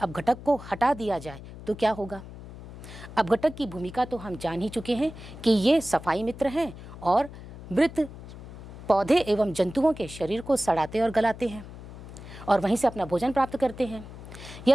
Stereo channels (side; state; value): left; noise; hum, 14 dB below the sound